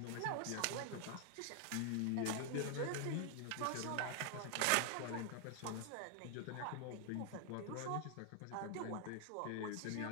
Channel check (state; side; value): different; both; correlation 0.00